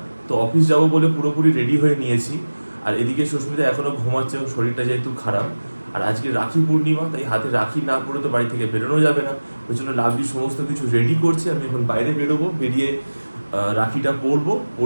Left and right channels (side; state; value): both; inverted; correlation -1.00